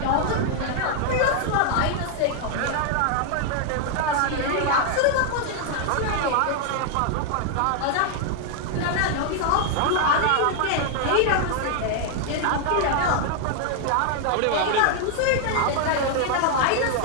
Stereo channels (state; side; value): different; both; correlation 0.00